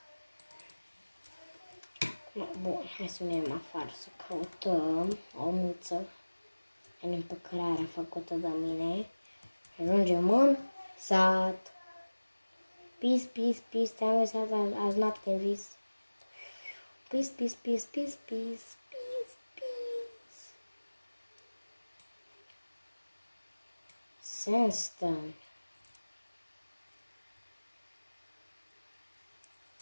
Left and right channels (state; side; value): inverted; both; correlation -1.00